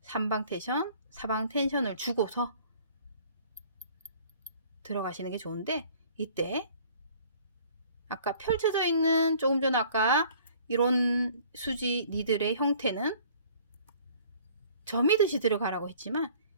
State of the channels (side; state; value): both; inverted; correlation -0.53